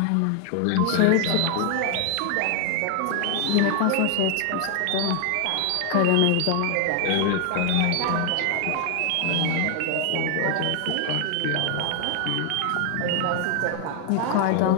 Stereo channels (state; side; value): different; both; correlation 0.00